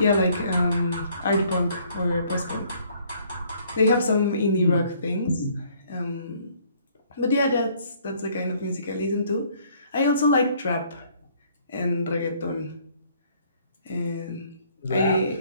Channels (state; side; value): inverted; both; correlation -0.62